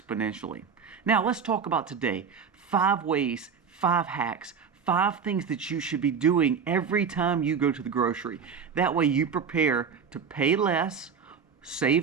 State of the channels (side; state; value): left; quieter; 6.4 dB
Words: Now let's talk about today 5 ways, 5 hacks, 5 things that you should be doing every time you go to the grocery. That way you prepare to pay less,